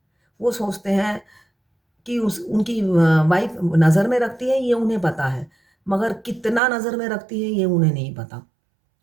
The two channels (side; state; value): left; drops out; at 6.6 s